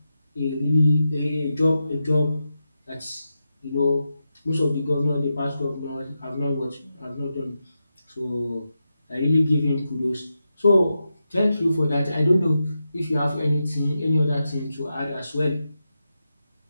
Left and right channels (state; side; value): inverted; both; correlation -0.89